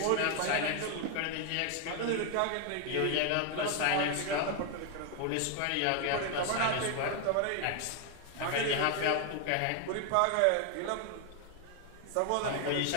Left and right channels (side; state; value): both; different; correlation 0.00